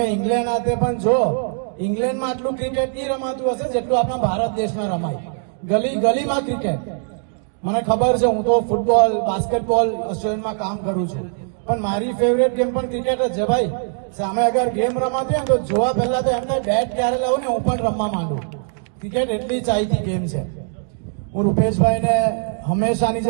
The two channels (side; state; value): left; silent; 60 dB below the other